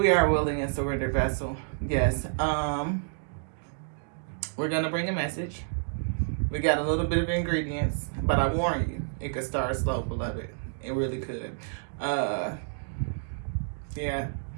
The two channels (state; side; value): silent; left; digital silence